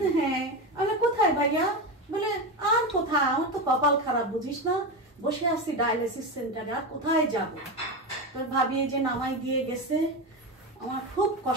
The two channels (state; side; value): normal; both; correlation 0.17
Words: হ্যাঁ, আমি কোথায় ভাইয়া, বলে আর কোথায়, আমার তো কপাল খারাপ বুঝিস না, বসে আছি ডায়ালিসিস সেন্টারে, আর কোথায় যাব। তোর ভাবি যে নামাই দিয়ে গেছে, আমার খুব